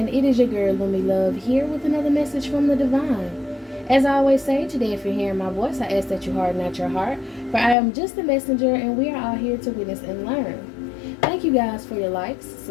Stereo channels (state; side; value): drops out; right; at 7.8 s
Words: it is your girl, Lumi Love, here with another message from the divine. As I always say, today if you're hearing my voice, I ask that you harden not your heart, for I am just a messenger and we are all here to witness and learn. Thank you guys for your likes,